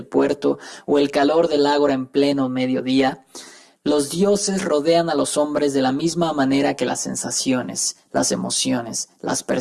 puerto o el calor del ágora en pleno mediodía, los dioses rodean a los hombres de la misma manera que las sensaciones, las emociones, las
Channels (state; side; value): identical; both; correlation 1.00